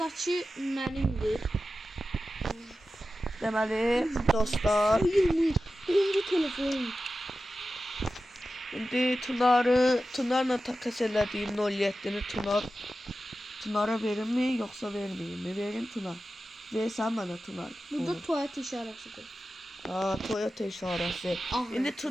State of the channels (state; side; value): normal; both; correlation 0.93